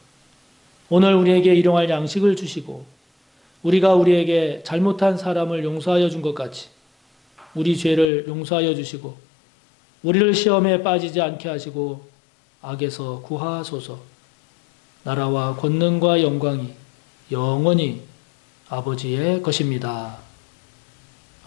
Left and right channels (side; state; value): right; drops out; at 8.1 s